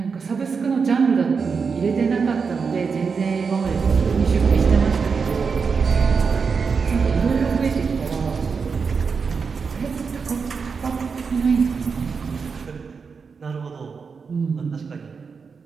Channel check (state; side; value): quieter; left; 5.4 dB